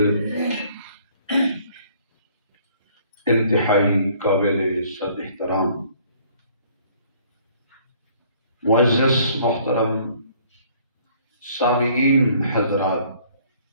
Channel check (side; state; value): both; inverted; correlation -0.59